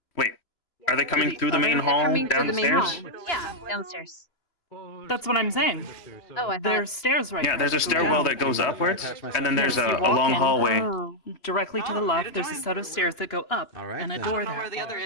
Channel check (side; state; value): right; late; 2.9 ms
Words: Wait, are they coming through the main They're hall coming through down the the main hall. stairs? Yeah, downstairs. That's what I'm saying. Oh, I thought... There's stairs right Yeah, there there's a that go stairwell down. that goes upwards, and then there's Yes, a you walk long in. hallway. Oh. Directly to the left, there's a set of stairs that go up, and a door there. Where the other